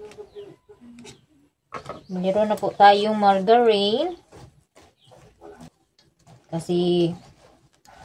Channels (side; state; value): both; identical; correlation 1.00